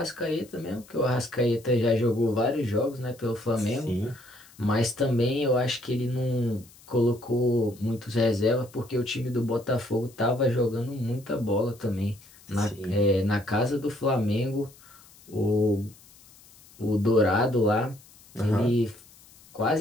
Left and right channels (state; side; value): noise; left; hiss, 25 dB below the sound